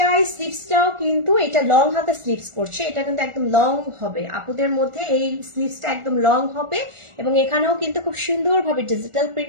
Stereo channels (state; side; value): late; left; 1.4 ms